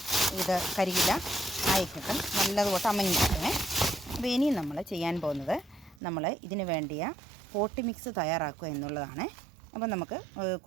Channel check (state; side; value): drops out; left; at 6.0 s